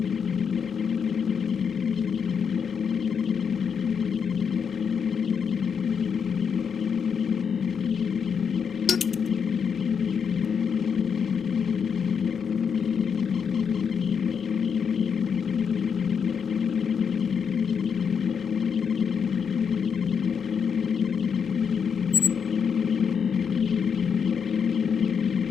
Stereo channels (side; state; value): right; quieter; 6.7 dB